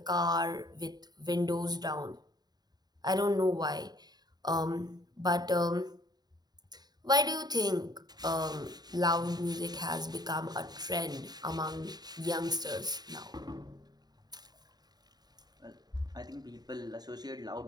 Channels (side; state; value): left; late; 0.20 ms